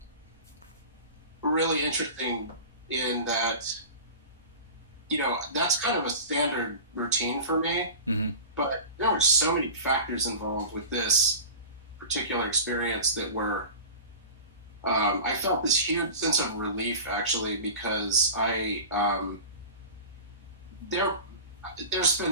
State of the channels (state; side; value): inverted; both; correlation -0.35